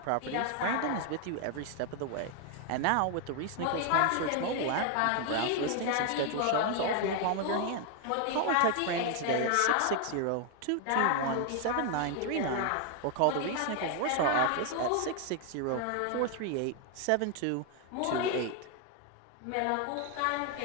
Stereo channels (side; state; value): both; different; correlation 0.00